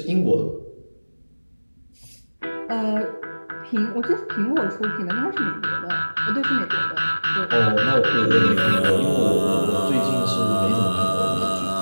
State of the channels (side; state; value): both; inverted; correlation -1.00